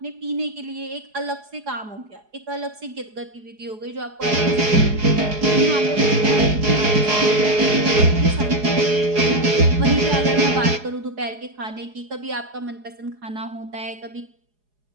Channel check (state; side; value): late; left; 4.8 ms